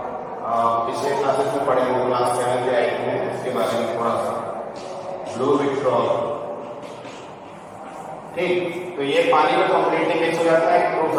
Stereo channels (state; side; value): identical; both; correlation 1.00